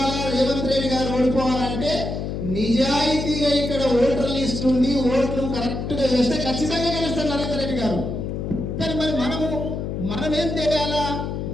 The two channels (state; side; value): noise; left; hum, 4 dB below the sound